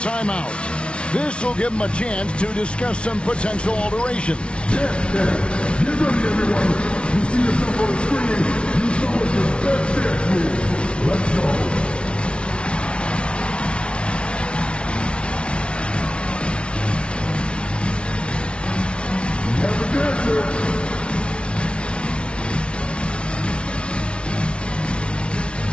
This will give him a chance to discuss some potential alteration. Get ready, everyone. You see yourself on the screen. You saw what your best dance move. Let's go.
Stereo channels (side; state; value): right; late; 0.058 ms